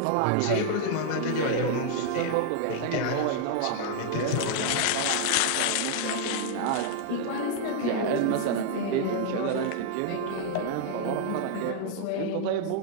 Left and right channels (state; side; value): different; both; correlation 0.00